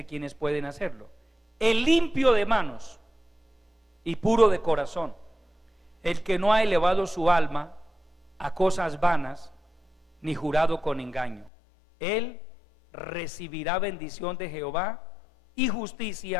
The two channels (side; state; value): right; drops out; at 11.5 s